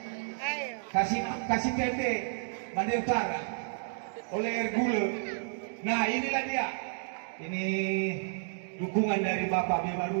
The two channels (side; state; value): left; silent; digital silence